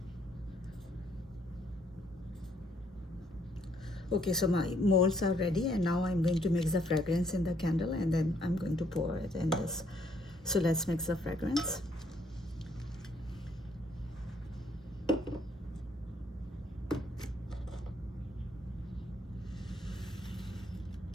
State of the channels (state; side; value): normal; both; correlation 0.69